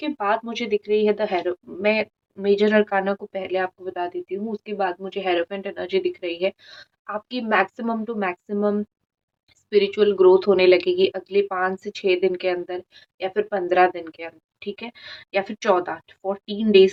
बाद मुझे दिख रही है द हैरो मैं मेजर अरकाना को पहले आपको बता देती हूँ, उसके बाद मुझे हेरोफेंट एनर्जी दिख रही है। आपकी maximum to maximum spiritual growth होने लगेगी अगले 5 से 6 दिन के अंदर या फिर 15 दिन के अंदर, ठीक है? या फिर 14 डेज़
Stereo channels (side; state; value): both; identical; correlation 1.00